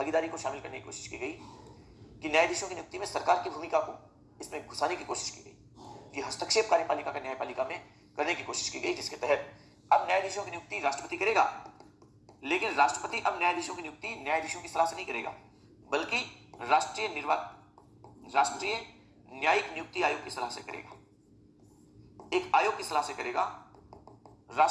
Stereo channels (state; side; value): identical; both; correlation 1.00